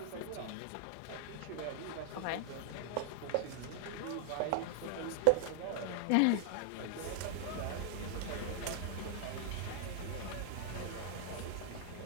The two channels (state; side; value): different; both; correlation 0.00